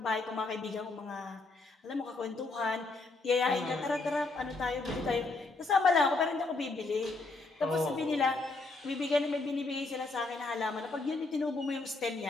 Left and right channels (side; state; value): right; quieter; 3.5 dB